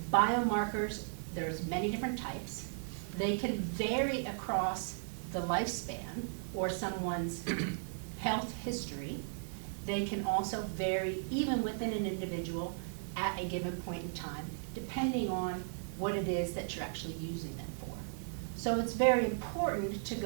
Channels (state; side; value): silent; left; 54 dB below the other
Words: biomarkers, there's many different types. They can vary across the lifespan or someone's health history. They can also vary even within an individual at a given point in time, depending on what it is that you're actually using them for. So it's very important to